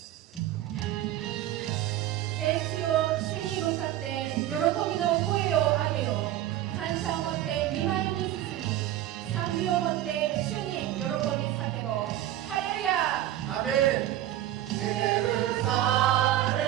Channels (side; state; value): left; quieter; 13.3 dB